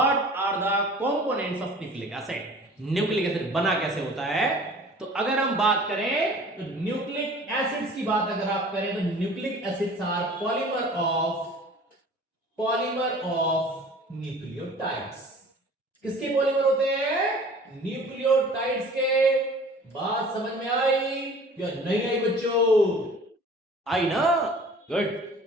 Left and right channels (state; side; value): normal; both; correlation 0.46